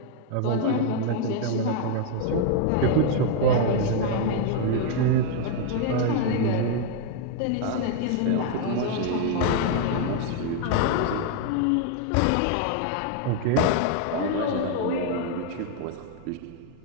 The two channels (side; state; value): both; different; correlation 0.00